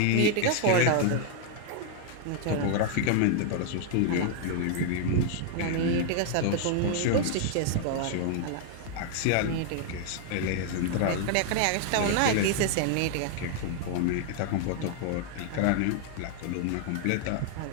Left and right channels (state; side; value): different; both; correlation 0.00